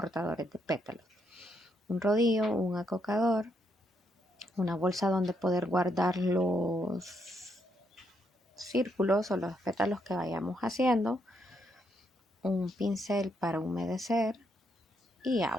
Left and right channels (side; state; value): both; normal; correlation 0.76